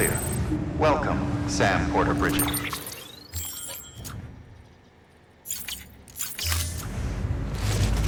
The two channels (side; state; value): both; identical; correlation 1.00